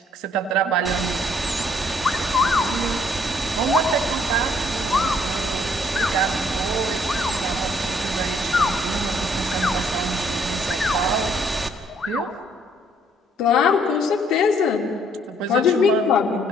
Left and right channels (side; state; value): both; normal; correlation 0.64